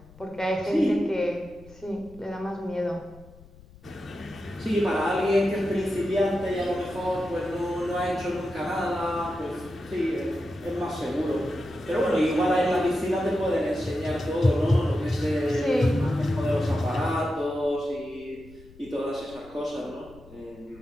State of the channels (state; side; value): noise; left; rumble, 22 dB below the sound